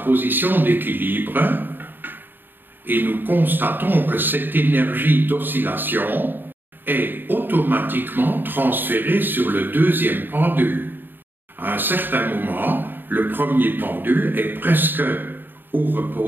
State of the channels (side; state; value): left; late; 0.094 ms